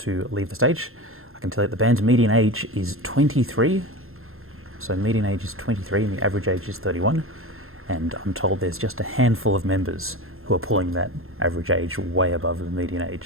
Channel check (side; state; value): left; late; 0.61 ms